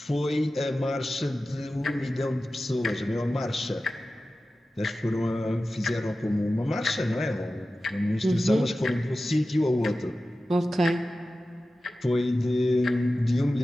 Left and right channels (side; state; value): both; normal; correlation 0.95